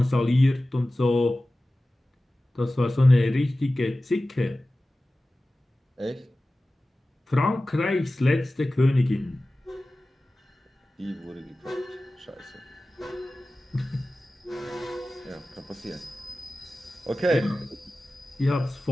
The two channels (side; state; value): both; normal; correlation 0.96